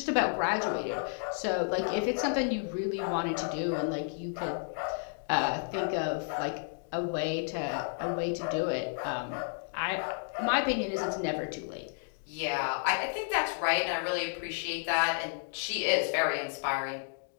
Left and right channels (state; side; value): silent; right; 57 dB below the other